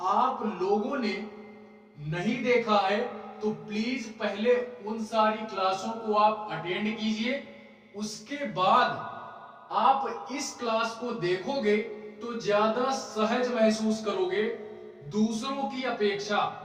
आप लोगों ने नहीं देखा है तो प्लीज पहले उन सारी क्लासों को आप अटेंड कीजिए। उसके बाद आप इस क्लास को देखोगे तो ज्यादा सहज महसूस करोगे दूसरों की अपेक्षा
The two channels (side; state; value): both; identical; correlation 1.00